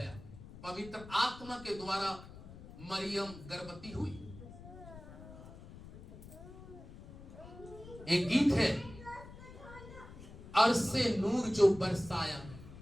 पवित्र आत्मा के द्वारा मरियम गर्भवती हुई। एक गीत है, अरसे नूर जो बरसाया।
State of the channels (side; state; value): left; noise; rumble, 16 dB below the sound